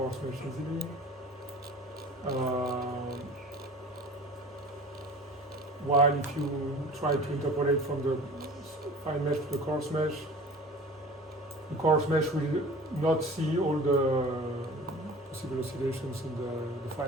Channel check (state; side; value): normal; both; correlation 0.41